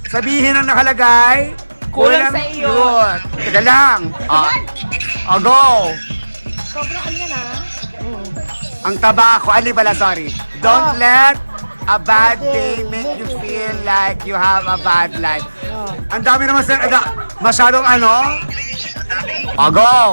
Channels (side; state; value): both; inverted; correlation -1.00